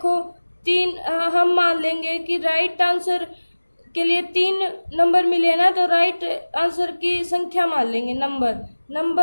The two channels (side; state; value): both; inverted; correlation -1.00